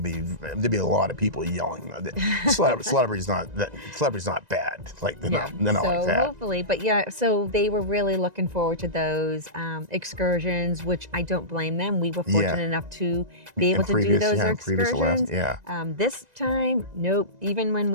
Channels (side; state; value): left; late; 1.9 ms